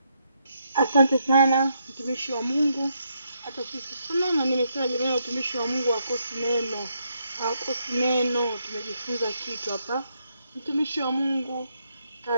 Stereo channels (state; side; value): inverted; both; correlation -0.78